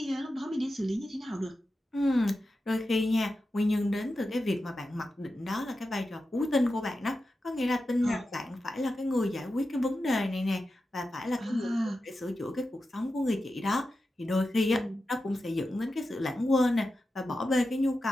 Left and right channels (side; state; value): both; normal; correlation 0.91